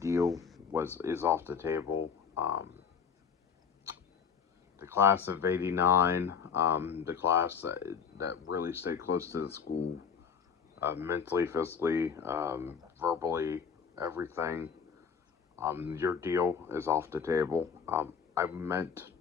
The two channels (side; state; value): right; quieter; 6.7 dB